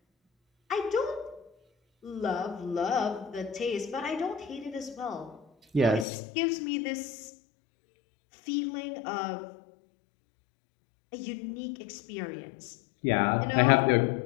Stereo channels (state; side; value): drops out; right; at 6.1 s